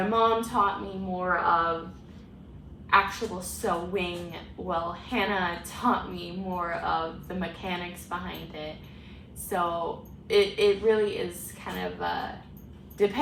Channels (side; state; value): both; identical; correlation 1.00